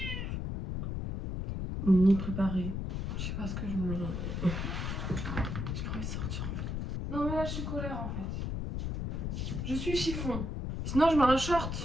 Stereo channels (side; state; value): left; noise; rumble, 3 dB below the sound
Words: ni préparée. Je sais pas ce que je me... J'ai pas envie de sortir en fait. Non mais là je suis colère en fait. Je suis chiffon. Sinon je mets un